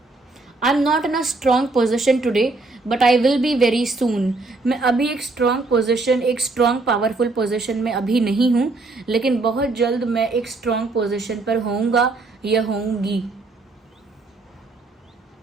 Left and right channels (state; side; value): quieter; left; 3.4 dB